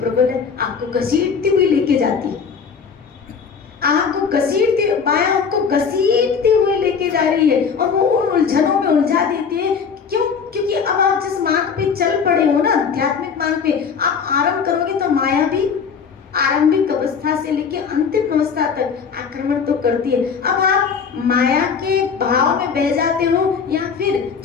है, आपको घसीटती हुई लेके जाती है, आपको घसीटती, माया आपको घसीटते हुए लेके जा रही है, और वो उन उलझनों में उलझा देती है। क्यों? क्योंकि अब आप जिस मार्ग पे चल पड़े हो ना, आध्यात्मिक मार्ग पे आप आरंभ करोगे तो माया भी आरंभिक अवस्था से लेके अंतिम अवस्था तक आक्रमण तो करती है। अब आप माया के भाव में बह जाते हो, या फिर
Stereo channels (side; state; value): right; quieter; 6.2 dB